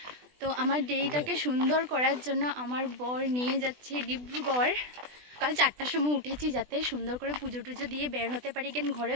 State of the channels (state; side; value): late; left; 20 ms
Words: তো আমার ডেটাকে সুন্দর করার জন্য আমার বর নিয়ে যাচ্ছে ডিব্রুগড়। কাল 4টার সময় উঠেছি যাতে সুন্দর করে পুজো টুজো দিয়ে বের হতে পারি, কেন ঘরে